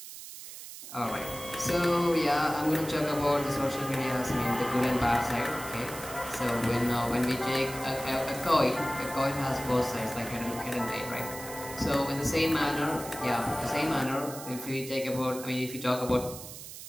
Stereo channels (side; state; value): right; noise; hiss, 12 dB below the sound